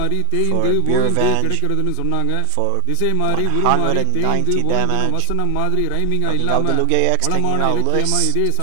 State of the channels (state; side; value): different; both; correlation 0.01